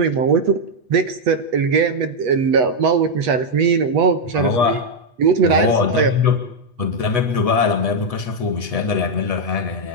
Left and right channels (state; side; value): late; left; 8.2 ms